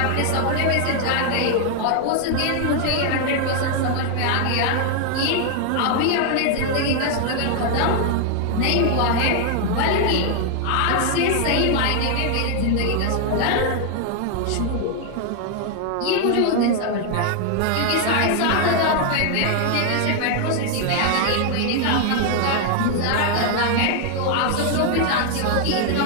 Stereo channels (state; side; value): different; both; correlation 0.00